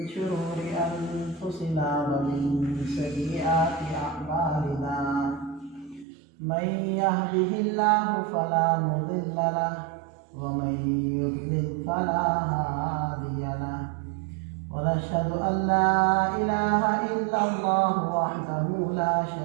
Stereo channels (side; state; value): left; drops out; at 6.1 s